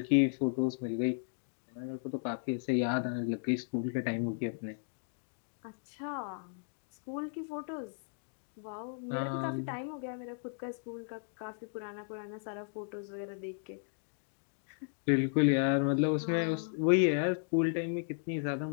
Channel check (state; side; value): silent; right; digital silence